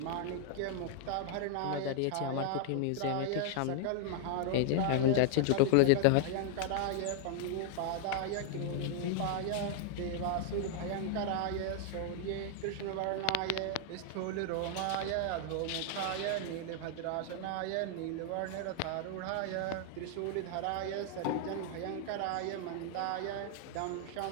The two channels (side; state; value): both; different; correlation 0.00